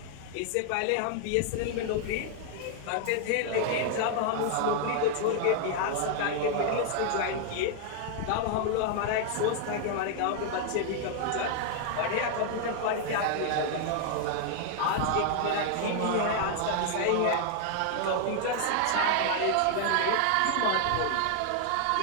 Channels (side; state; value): both; different; correlation 0.00